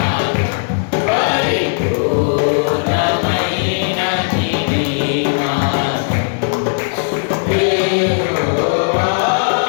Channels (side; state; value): right; silent; 61 dB below the other